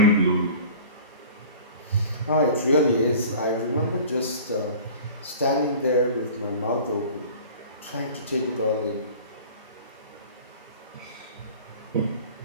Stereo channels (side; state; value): both; inverted; correlation -0.43